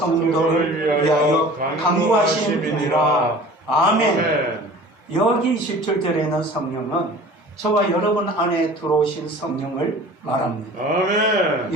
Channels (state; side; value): normal; both; correlation 0.43